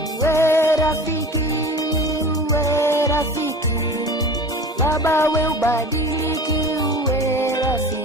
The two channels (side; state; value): both; normal; correlation 0.37